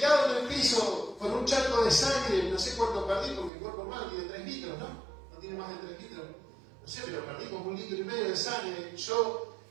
en el piso, con un charco de sangre, no sé cuánto perdí, porque el cuerpo humano tiene 3 litros, ¿no? No tiene más de 3 litros. No sé, pero perdí como 1,5 litros de sangre. Yo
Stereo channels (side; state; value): left; drops out; at 3.5 s